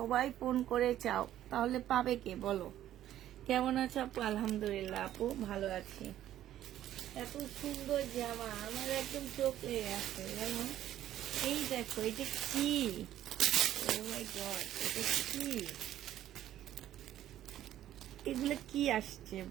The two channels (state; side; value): quieter; left; 12.3 dB